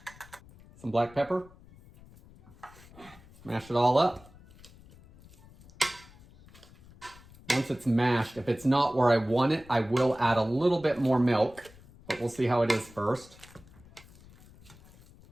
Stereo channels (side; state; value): left; noise; rumble, 23 dB below the sound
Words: some black pepper. Mash it all up. once it's mashed, if it's not where I want it, I will add a little bit more milk, but we'll see how it is first.